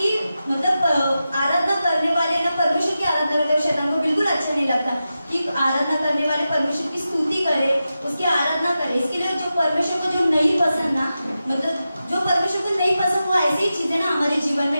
मतलब आराधना करने वाले ना परमेश्वर की आराधना करते हैं, शैतान को बिल्कुल अच्छा नहीं लगता कि आराधना करने वाले परमेश्वर की स्तुति करे, उसकी आराधना करे। इसके लिए जो परमेश्वर को जो नहीं पसंद ना, मतलब जो परमेश्वर को नहीं पसंद वो ऐसी ही चीजें ना हमारे जीवन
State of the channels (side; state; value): both; inverted; correlation -0.91